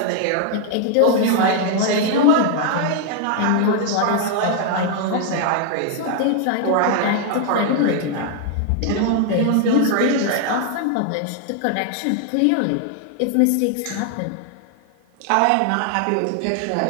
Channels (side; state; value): both; different; correlation 0.00